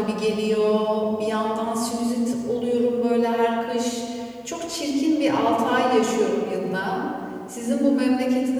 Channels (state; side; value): identical; both; correlation 1.00